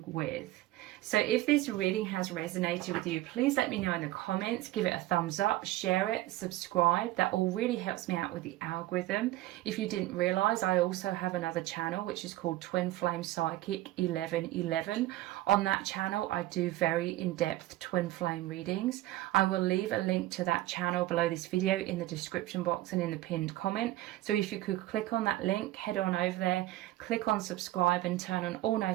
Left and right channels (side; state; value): left; quieter; 16.3 dB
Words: with. So if this reading has resonated with you, please let me know in the comments, give it a thumbs up, share it, subscribe. That all really helps me out with the algorithm. If you didn't realize, I also have another channel which is called Twin Flame Psychic 1111. On that channel, I do very in-depth twin flame readings. I will leave a link to that channel below this video in the description box and in the pinned comment. So if you could click on that link, head on over there, click on subscribe and turn on all